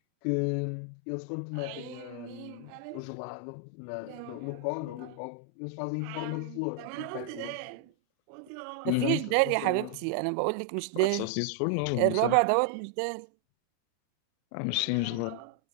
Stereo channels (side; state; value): both; different; correlation 0.00